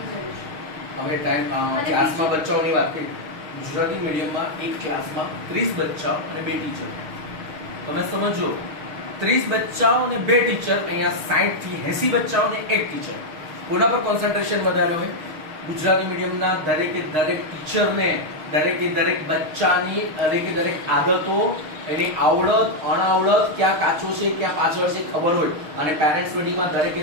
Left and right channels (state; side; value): late; left; 6.4 ms